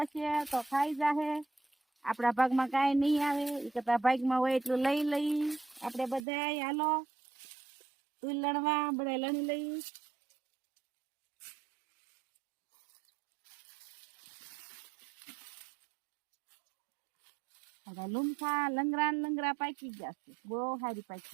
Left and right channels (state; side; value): drops out; left; at 6.2 s